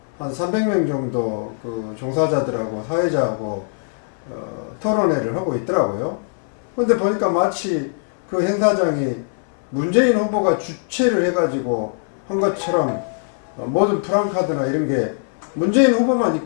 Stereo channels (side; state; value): right; silent; 62 dB below the other